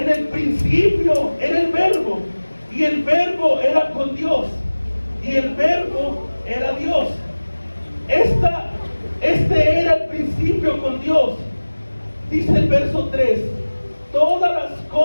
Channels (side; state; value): both; inverted; correlation -1.00